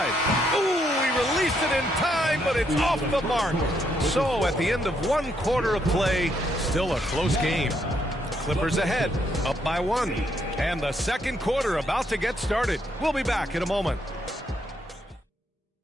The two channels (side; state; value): both; normal; correlation 0.75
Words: Ooh, he released it in time, but it's off the mark. So at the end of 1 quarter of play, still a close game. Clippers ahead, up by 1. And the second quarter about to get started. We'll be back in a moment.